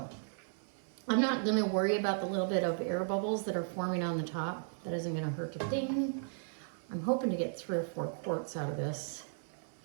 I'm not gonna worry about the little bit of air bubbles that are forming on the top. That isn't gonna hurt a thing. I'm hoping to get 3 or 4 quarts out of this.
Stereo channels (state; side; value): silent; left; 54 dB below the other